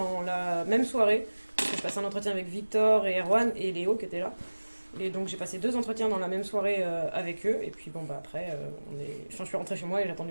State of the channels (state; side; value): inverted; both; correlation -1.00